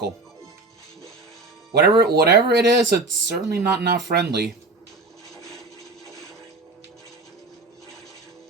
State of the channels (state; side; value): quieter; left; 3.4 dB